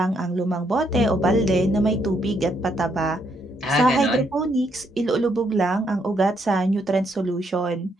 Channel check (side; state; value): both; normal; correlation 0.74